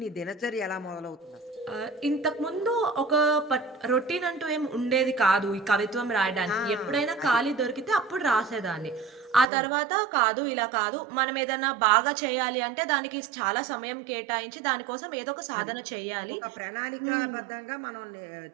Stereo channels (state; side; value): drops out; left; at 9.5 s